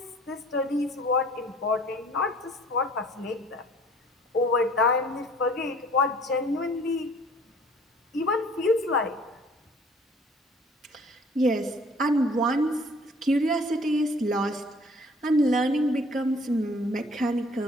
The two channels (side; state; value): both; normal; correlation 0.54